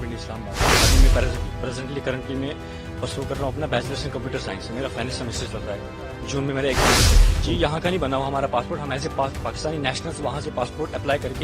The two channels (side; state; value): both; identical; correlation 1.00